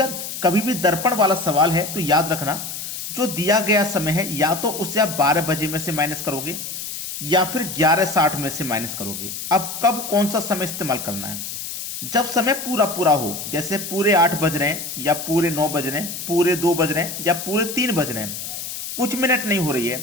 कभी भी दर्पण वाला सवाल है तो याद रखना, जो दिया गया समय है या तो उसे आप 12 बजे में से माइनस करोगे या फिर 11:60 में से माइनस करोगे। अब कब कौन सा समय इस्तेमाल करना है? जब समय पूरा पूरा हो, जैसे पूरे 8 बज रहे हैं या पूरे 9 बज रहे हैं, पूरे 2 बज रहे हैं या पूरे 3 बज रहे हैं, कुछ मिनट नहीं हो रही है,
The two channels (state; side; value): noise; left; hiss, 7 dB below the sound